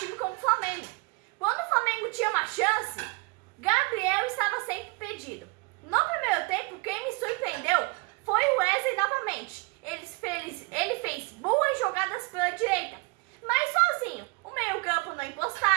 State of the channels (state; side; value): quieter; left; 28.3 dB